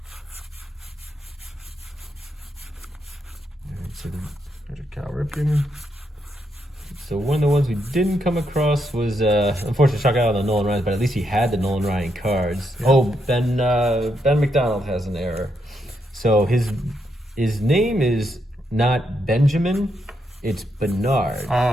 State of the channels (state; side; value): normal; both; correlation 0.80